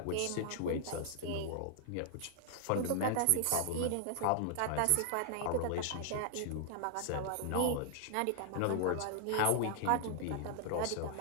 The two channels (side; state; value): both; different; correlation -0.01